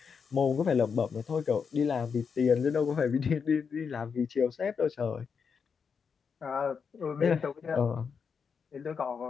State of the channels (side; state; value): right; quieter; 6.1 dB